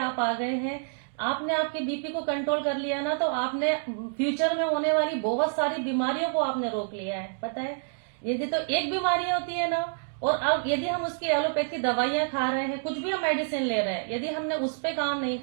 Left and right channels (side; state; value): left; silent; digital silence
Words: आ गए हैं। आपने आपके बीपी को कंट्रोल कर लिया ना, तो आपने फ्यूचर में होने वाली बहुत सारी बीमारियों को आपने रोक लिया है। पता है, यदि तो एक बीमारी होती है ना, और अब यदि हम उसकी एलोपैथी दवाइयां खा रहे हैं, कुछ भी हम मेडिसिन ले रहे हैं, यदि हमने उस पे काम नहीं